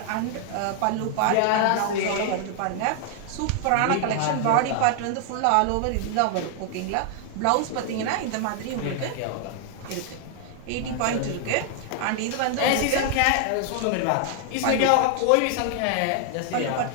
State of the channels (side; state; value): both; different; correlation 0.00